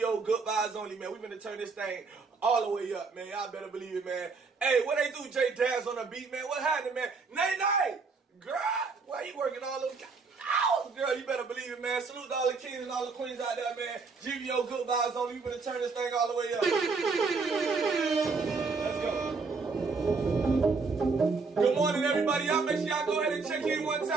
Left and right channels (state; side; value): quieter; left; 4.5 dB